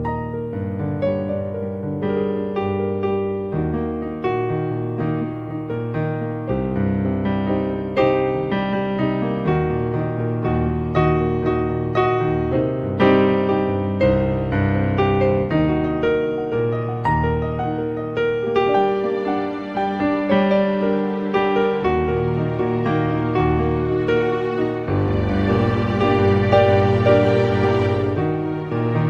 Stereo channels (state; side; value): identical; both; correlation 1.00